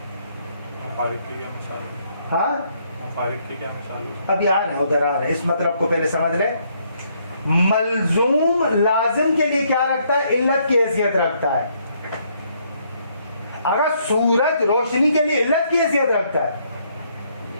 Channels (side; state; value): both; inverted; correlation -0.70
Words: مفارق کی کیا مثال ہے؟ ہاں مفارق کی کیا مثال ہے؟ ابھی آ رہے ہیں, ادھر آ رہے ہیں, اس مطلب کو پہلے سمجھ لیں. ملزوم لازم کے لیے کیا رکھتا ہے علت کی حیثیت رکھتا ہے. اگر سورج روشنی کے لیے علت کی حیثیت رکھتا ہے,